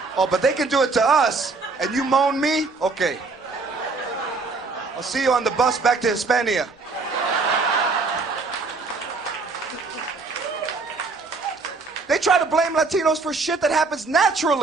Oh, but they can do it to us, and you moan me? Okay. I'll see you on the bus back to Hispania. They try to blame Latinos for shit that happens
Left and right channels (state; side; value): quieter; left; 4.0 dB